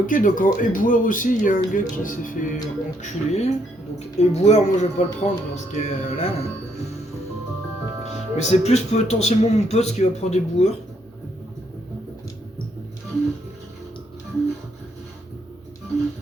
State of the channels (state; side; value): normal; both; correlation 0.72